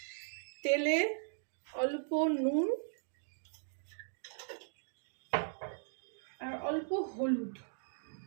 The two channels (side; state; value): left; silent; digital silence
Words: তেলে অল্প নুন আর অল্প হলুদ